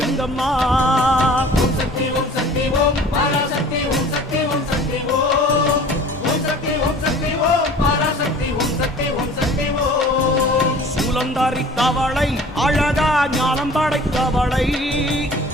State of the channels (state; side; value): normal; both; correlation 0.46